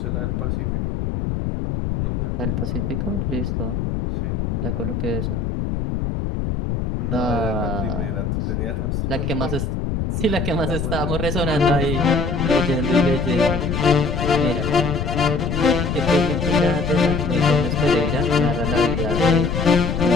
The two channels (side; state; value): left; noise; rumble, 1 dB below the sound